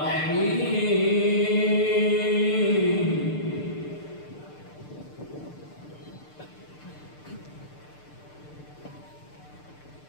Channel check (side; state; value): right; late; 6.7 ms